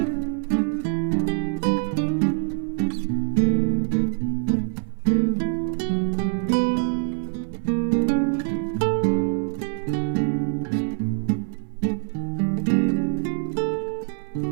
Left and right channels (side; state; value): left; silent; 62 dB below the other